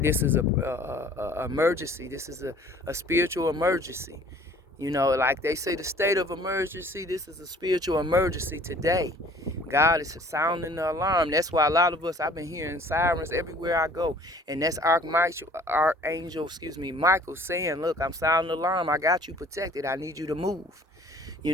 emergency. This is a spiritual emergency. Like they say, the state of emergency, this is a spiritual emergency today. God is sounding the alarm. That's why a lot of us, I've been hearing sirens everywhere I go. And that's Archangel, Michael saying, look, I'm sounding the alarm. I got you protected. I need you to move. You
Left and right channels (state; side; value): normal; both; correlation 0.52